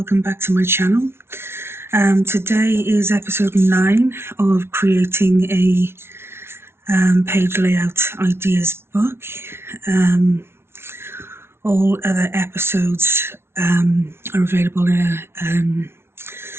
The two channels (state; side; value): late; left; 0.12 ms